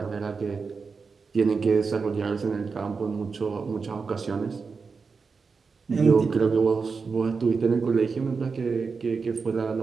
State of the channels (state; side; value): quieter; left; 4.9 dB